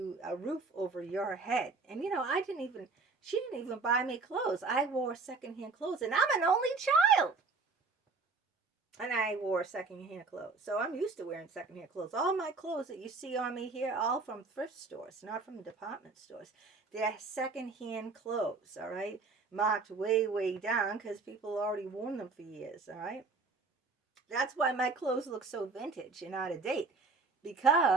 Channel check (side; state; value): left; quieter; 4.2 dB